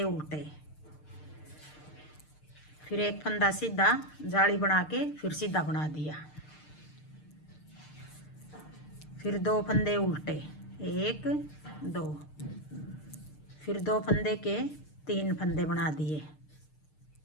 उल्टे, फिर एक फंदा सीधा, जाली बना के फिर सीधा बना दिया। फिर दो फंदे उल्टे, एक दो, फिर दो फंदे के तीन फंदे बना दिए,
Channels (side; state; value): right; late; 6.6 ms